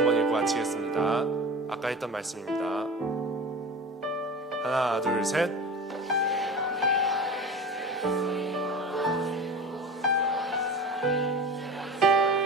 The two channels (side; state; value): both; normal; correlation 0.34